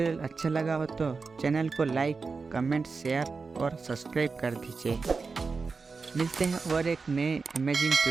अच्छा लगा हो तो चैनल को लाइक, कमेंट, शेयर और सब्सक्राइब कर दीजिए। मिलते हैं और एक नए अमेजिंग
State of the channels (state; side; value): quieter; left; 4.6 dB